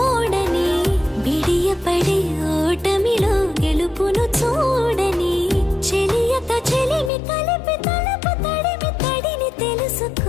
బిడియపడే ఓటమిలో గెలుపును చూడని చెలియతో చెలిమి కలిపి తలపు తడిమి తడిని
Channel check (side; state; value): right; drops out; at 7.1 s